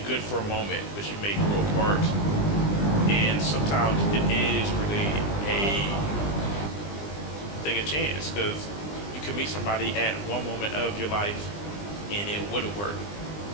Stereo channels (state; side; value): late; right; 20 ms